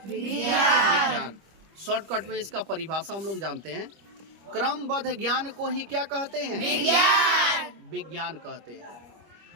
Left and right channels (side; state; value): left; late; 25 ms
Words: विज्ञान। शॉर्टकट में इसका परिभाषा हम लोग जानते हैं, क्रमबद्ध ज्ञान को ही क्या कहते हैं? विज्ञान कहते